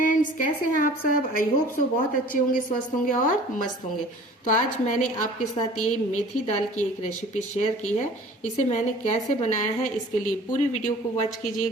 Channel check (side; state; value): both; normal; correlation 0.47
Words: कैसे हैं आप सब। आई होप सो बहुत अच्छे होंगे, स्वस्थ होंगे और मस्त होंगे। तो आज मैंने आपके साथ ये मेथी दाल की एक रेसिपी शेयर की है। इसे मैंने कैसे बनाया है, इसके लिए पूरी वीडियो को वॉच